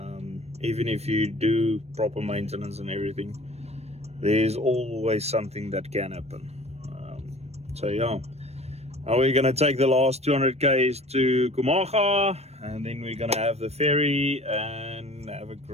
Even if you do proper maintenance and everything, there's always something that can happen. So yeah, now we're gonna take the last 200 k's to Khwai, and then we're gonna have the ferry and have a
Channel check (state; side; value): late; left; 0.31 ms